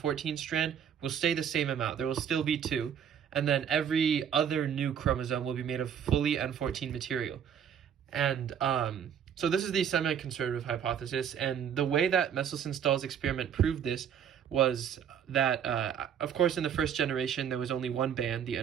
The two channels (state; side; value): quieter; left; 8.5 dB